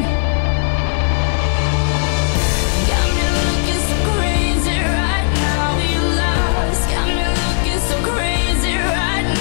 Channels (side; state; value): right; silent; digital silence